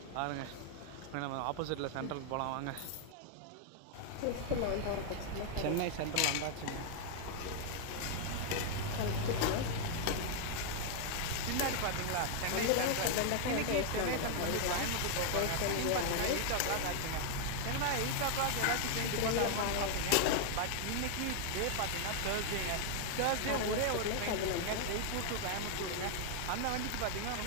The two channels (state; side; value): different; both; correlation 0.00